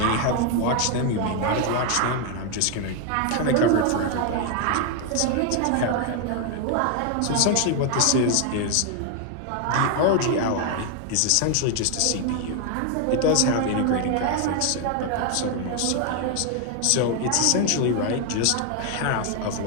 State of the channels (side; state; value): both; different; correlation 0.01